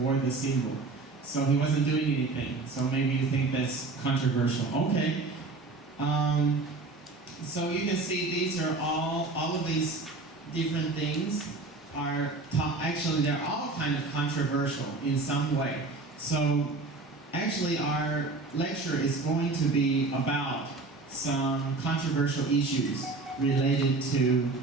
the symbol. So he wasn't doing anything. So maybe you think that's controversial. Okay. So you can see these are all of these different things are, actually they're all kind of controversial in some way. So actually our lecture is going to be about some controversial issues related to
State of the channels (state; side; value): quieter; left; 3.5 dB